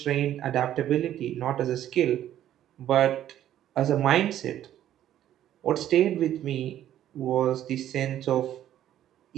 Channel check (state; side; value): quieter; left; 11.7 dB